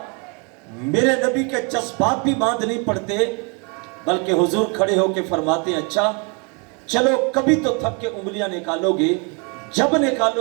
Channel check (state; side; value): quieter; left; 34.0 dB